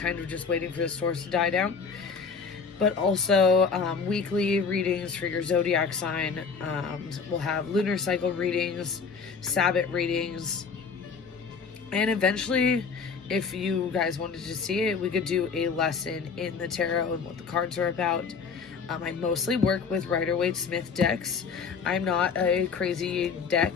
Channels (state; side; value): quieter; right; 5.4 dB